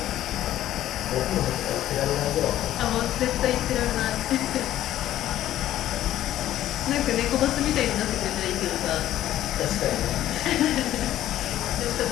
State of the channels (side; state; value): right; quieter; 13.0 dB